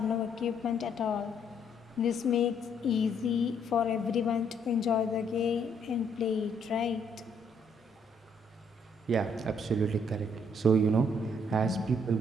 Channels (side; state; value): both; normal; correlation 0.69